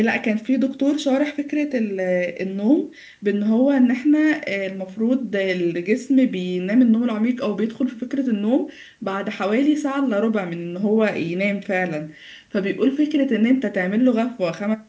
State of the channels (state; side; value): identical; both; correlation 1.00